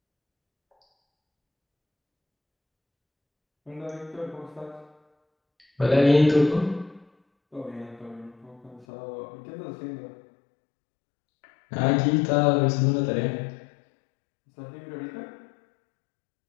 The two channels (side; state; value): right; drops out; at 8.8 s